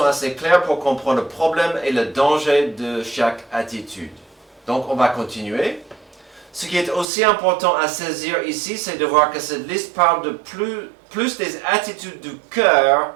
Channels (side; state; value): left; drops out; at 7.1 s